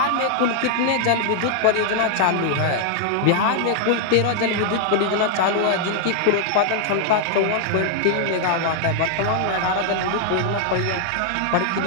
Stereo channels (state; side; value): different; both; correlation 0.00